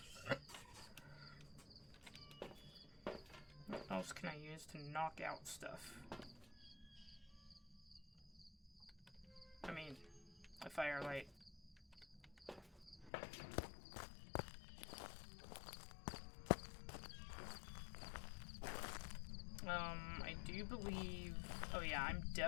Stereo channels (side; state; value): right; drops out; at 13.1 s